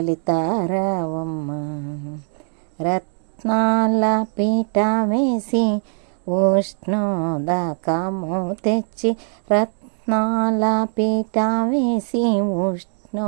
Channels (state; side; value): silent; left; 58 dB below the other